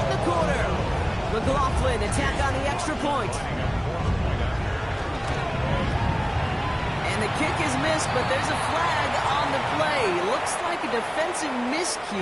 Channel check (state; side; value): identical; both; correlation 1.00